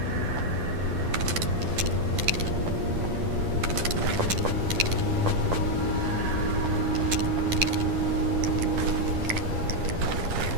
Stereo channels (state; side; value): late; left; 10 ms